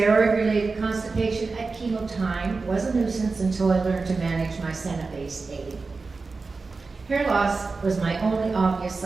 constipation at chemo time was a nuisance until I learned to manage my Senna-based aid. Hair loss was my only obvious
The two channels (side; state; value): left; quieter; 4.1 dB